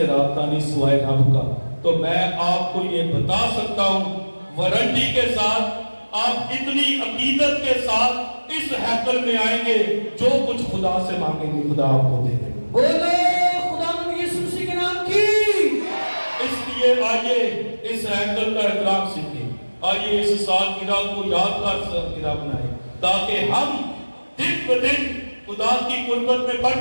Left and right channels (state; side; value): inverted; both; correlation -1.00